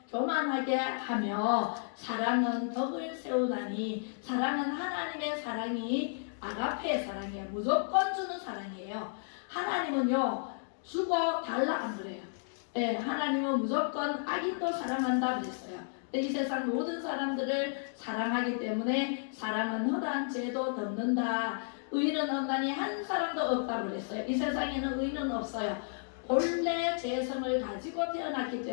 교만하게 하며 사랑은 덕을 세우나니 사랑은 하나님의 사랑이 아가페의 사랑이에요. 무조건 주는 사랑이에요. 하나님은요 주고 달라 안 그래요. 네, 하나님은 무조건 악인도 사랑한다 그랬어요. 이 세상 모든 사람들을 사랑하기 때문에 사랑은 허다한 죄도 덮는다. 의인은 없나니 한 사람도 없다고 그랬어요. 이 세상에는 의인은 없어요. 본래 죄성을 가지고 태어났기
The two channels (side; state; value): right; silent; digital silence